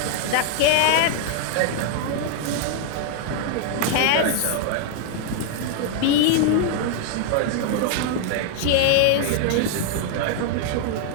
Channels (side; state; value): both; different; correlation 0.00